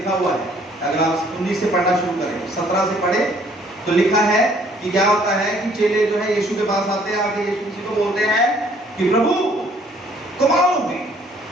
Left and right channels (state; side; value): normal; both; correlation 0.61